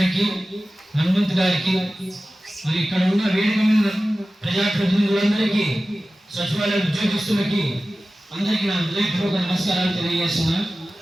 హనుమంత్ గారికి మరి ఇక్కడ ఉన్న వేదిక మీద ప్రజాప్రతినిధులందరికీ సచివాలయ ఉద్యోగస్తులకి అందరికీ నా హృదయపూర్వక నమస్కారాలు తెలియజేస్తున్నా.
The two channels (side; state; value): both; normal; correlation 0.95